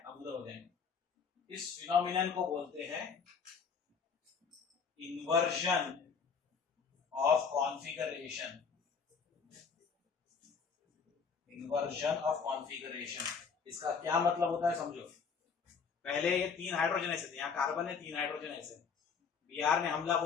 हम उधर हो जाएंगे। इस फिनोमिनन को बोलते हैं inversion of configuration. Inversion of configuration, इसका क्या मतलब होता है समझो। पहले ये 3 हाइड्रोजन ऐसे थे, यहाँ कार्बन है, 3 हाइड्रोजन ऐसे। Br ने हमला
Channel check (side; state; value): right; quieter; 5.8 dB